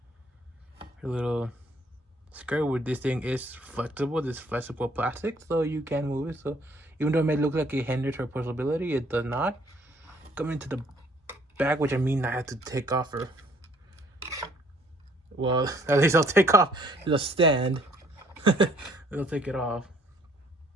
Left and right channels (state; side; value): normal; both; correlation 0.61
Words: Her little skirt with this thing is flexible. This flexible plastic, so you can move it. So even though it may look like it hinders her portability, it does not. Coming into the back, which I mean I have to take off her. Well, at least I'll take off the stand. I'll take it off.